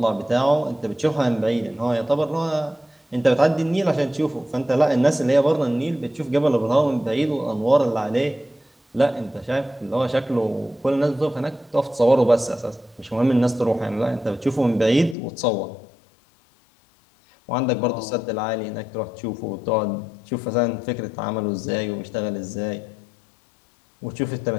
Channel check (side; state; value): right; drops out; at 15.2 s